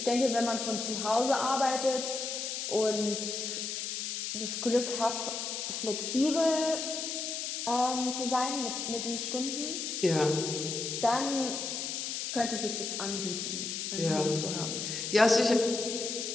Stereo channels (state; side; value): noise; left; hiss, 3 dB below the sound